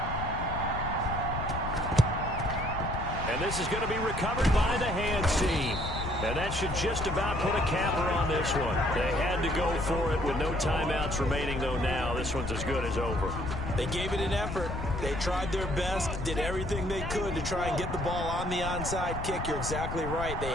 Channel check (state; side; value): noise; left; rumble, 5 dB below the sound